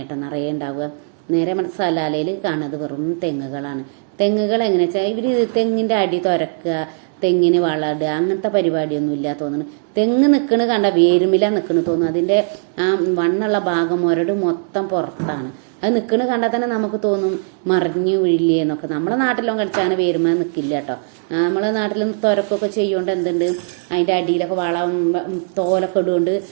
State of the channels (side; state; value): left; silent; 65 dB below the other